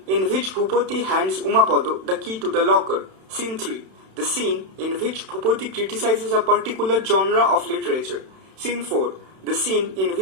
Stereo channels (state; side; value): late; left; 31 ms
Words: in which Bhupati hands Umapada the key to the locker. Scene 3. The scene in which Bhupati criticizes a particular genre of literature. Scene 4. The scene in